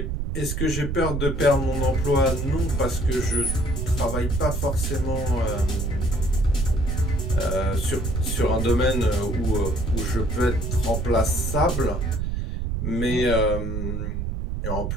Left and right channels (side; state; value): right; noise; rumble, 2 dB below the sound